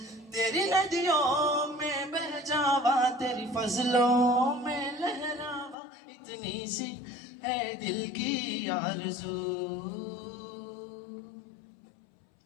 तेरी नदियों में बह जावा तेरी फजलों में लहरावा इतनी सी है दिल की आरज़ू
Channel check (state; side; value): drops out; right; at 5.8 s